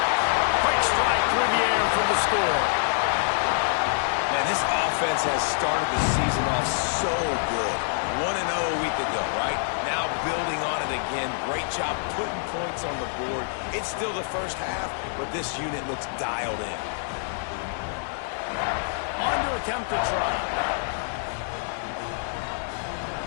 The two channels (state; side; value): silent; right; digital silence